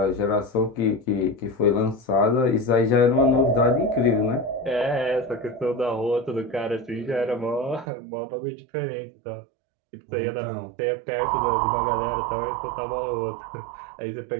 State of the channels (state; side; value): drops out; left; at 7.9 s